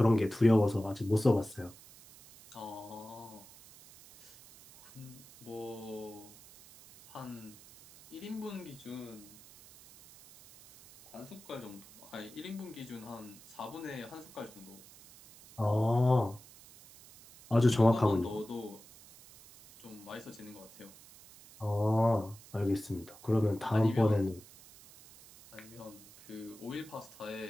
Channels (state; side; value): noise; right; hiss, 21 dB below the sound